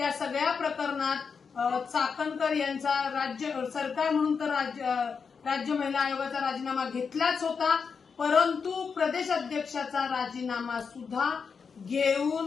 सगळ्या प्रकरणात चाकणकर यांचा राज्य सरकार म्हणून तर राज्य महिला आयोगाचा राजीनामा घेतलाच होता, परंतु प्रदेश अध्यक्षाचा राजीनामा सुद्धा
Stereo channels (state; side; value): quieter; right; 5.7 dB